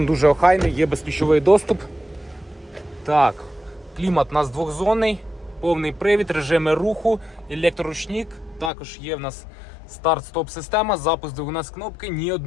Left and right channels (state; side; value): drops out; right; at 8.7 s